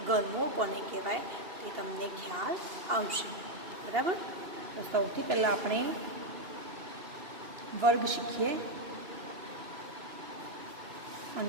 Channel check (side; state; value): left; late; 2.7 ms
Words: ઘનમૂળ કોને કહેવાય એ તમને ખ્યાલ આવશે. બરાબર. તો સૌથી પહેલાં આપણે વર્ગ શીખીએ